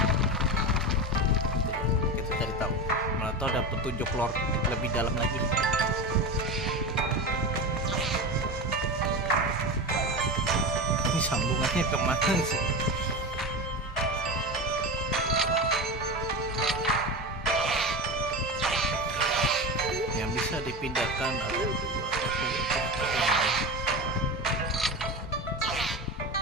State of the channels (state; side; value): normal; both; correlation 0.23